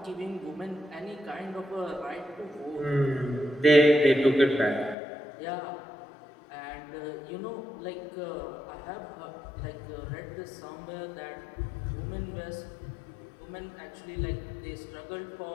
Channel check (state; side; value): drops out; right; at 5.0 s